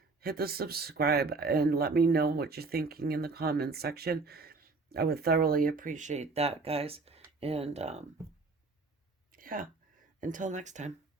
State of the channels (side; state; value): left; quieter; 3.9 dB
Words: Hit the subscribe and let me know what you're thinking in the comments section. I would thoroughly appreciate that, guys. And yeah, until next time,